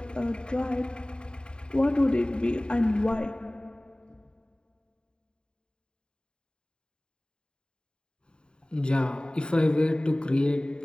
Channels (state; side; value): late; right; 0.050 ms